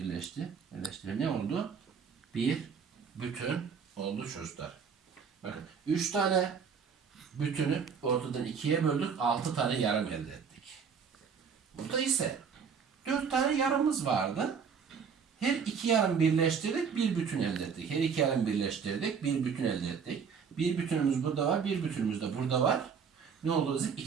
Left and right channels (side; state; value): left; quieter; 6.4 dB